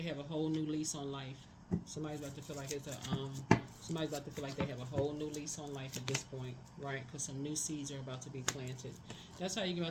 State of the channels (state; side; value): identical; both; correlation 1.00